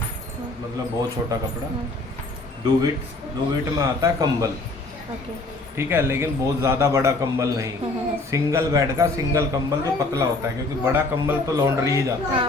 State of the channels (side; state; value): right; quieter; 3.1 dB